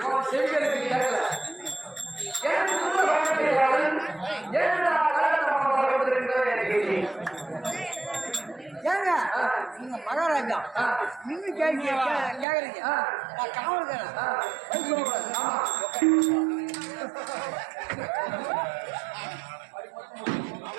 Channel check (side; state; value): left; drops out; at 12.5 s